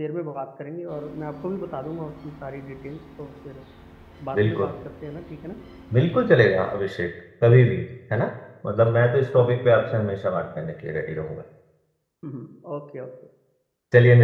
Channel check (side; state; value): both; identical; correlation 1.00